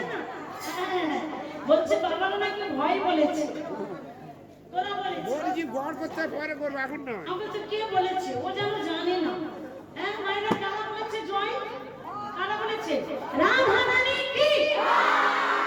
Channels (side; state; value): both; identical; correlation 1.00